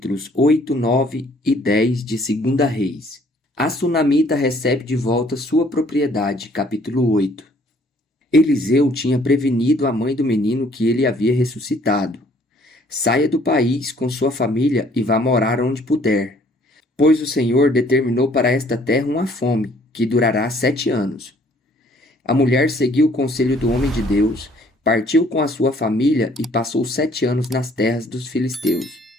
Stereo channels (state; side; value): normal; both; correlation 0.60